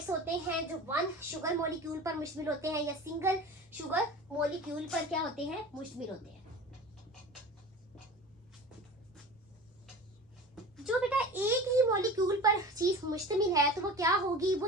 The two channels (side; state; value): both; normal; correlation 0.36